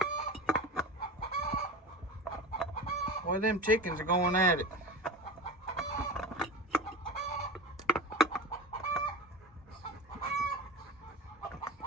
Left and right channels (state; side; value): normal; both; correlation 0.29